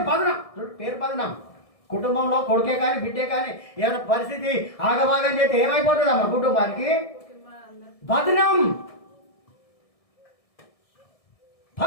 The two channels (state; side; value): late; right; 1.6 ms